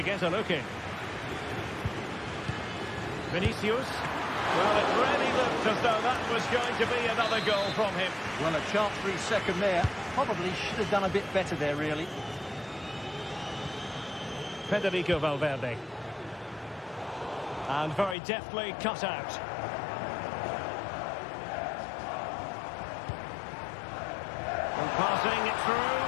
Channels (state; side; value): drops out; right; at 18.2 s